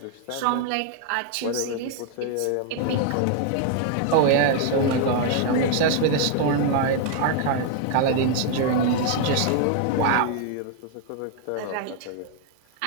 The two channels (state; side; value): different; both; correlation 0.00